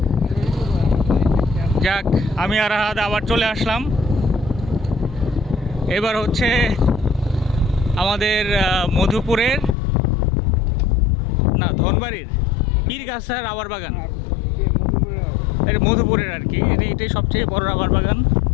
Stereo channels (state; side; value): drops out; right; at 9.8 s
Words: যাক, আমি আর আহাদ আবার চলে আসলাম। এবার হচ্ছে আমাদের মধুপুরের না ধনবাড়ির পীরগাছা রাবার বাগান। এটা মধুপুরের আর কি, এটাই সবচেয়ে বড় রাবার বাগান।